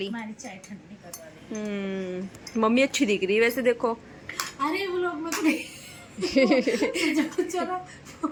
हमारी चाय ठंडी करवा ली। मम्मी अच्छी दिख रही है वैसे देखो। अरे वो लोग मत चलो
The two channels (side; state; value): both; identical; correlation 1.00